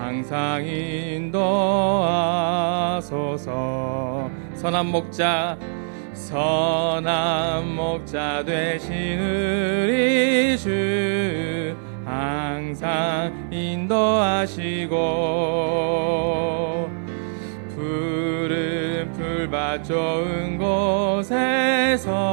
인도하소서. 선한 목자 되신 우리 주 항상 인도하시고 푸른 풀밭 좋은 곳에서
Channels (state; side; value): silent; left; digital silence